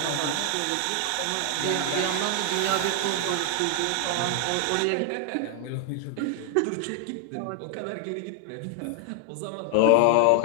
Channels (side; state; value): both; different; correlation 0.00